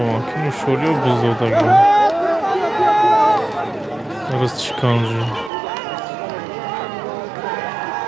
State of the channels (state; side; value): drops out; left; at 5.5 s